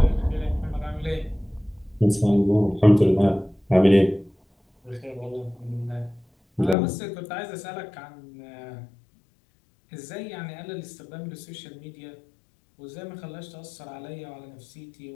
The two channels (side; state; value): right; drops out; at 6.8 s